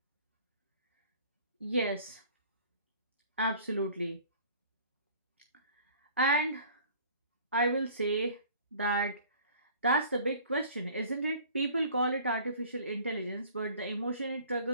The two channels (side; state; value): both; inverted; correlation -0.50